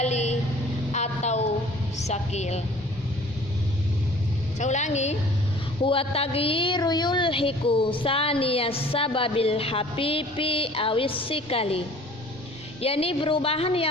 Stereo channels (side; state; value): both; normal; correlation 0.50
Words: atau sakil. Saya ulangi, huwa taghyiru yulhiku saniyas sababil habibi awis sikali, yakni perubahan